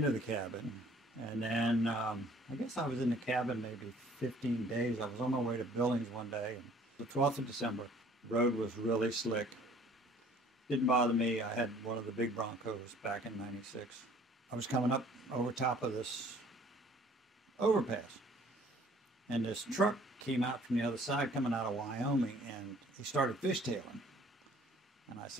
the cabin, and then I guess I was in the cabin maybe 15 days. I was on my way to Billings one day, and the 12th of December, the road was really slick. Didn't bother me. I had one of the big Broncos back in '96. I was coming up over top of this overpass, and this truck came out from the other side coming out of Wyoming, and he started fishtailing. And I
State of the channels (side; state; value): both; normal; correlation 0.55